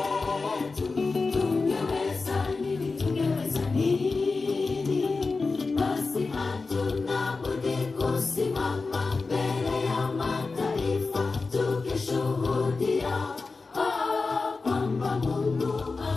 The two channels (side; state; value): right; quieter; 4.0 dB